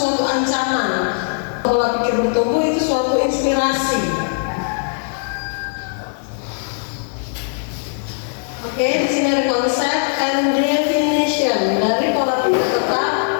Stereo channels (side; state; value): right; silent; digital silence